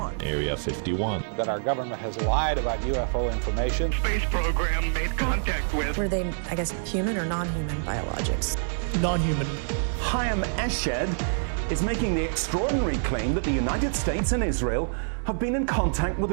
Area 51. That our government has lied about UFO information. Space program made contact with. Were they, I guess, human or non-human biologics? Non-human. Hayam Eshed is making the extraordinary claim that the United States and Israel have been in contact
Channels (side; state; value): left; silent; digital silence